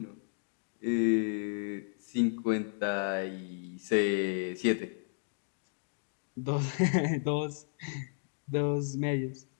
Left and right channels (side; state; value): right; silent; digital silence